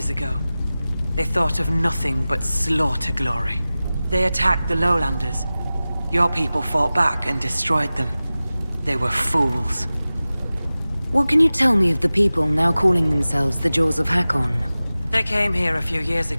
ago. They thought of nothing but slaughter glory. They attacked the Lowlanders. Your people fought back and destroyed them. They were fools. What can you tell me of the people now calling themselves the Jaws of Hakkon? They came here a few years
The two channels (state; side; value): inverted; both; correlation -0.97